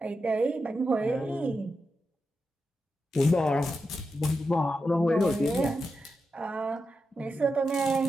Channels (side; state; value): both; normal; correlation 0.88